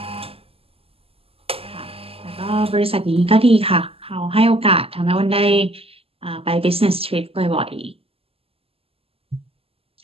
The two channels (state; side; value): late; left; 0.28 ms